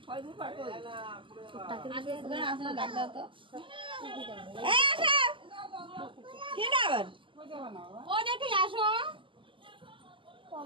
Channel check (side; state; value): left; late; 0.25 ms